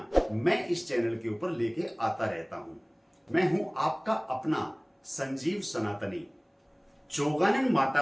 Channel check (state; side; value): identical; both; correlation 1.00